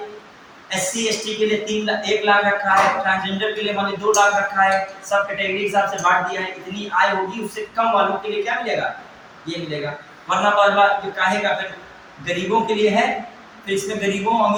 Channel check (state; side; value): identical; both; correlation 1.00